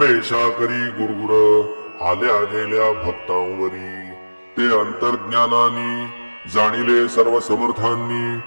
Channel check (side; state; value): both; inverted; correlation -1.00